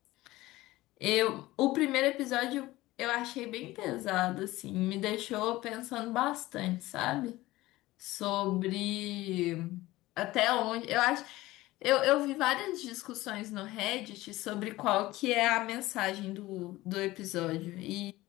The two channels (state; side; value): quieter; right; 18.1 dB